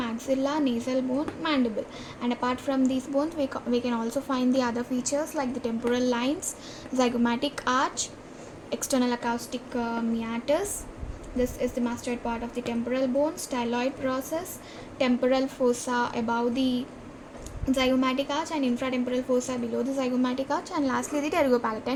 nasal bone, mandible. And apart from these bones, we can also find the other features like the temporal lines, zygomatic arch, external acoustic meatus. This is the mastoid part of the temporal bone, styloid process, temporal fossa above the zygomatic arch and infratemporal fossa below the zygomatic arch, and lastly the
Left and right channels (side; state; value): both; identical; correlation 1.00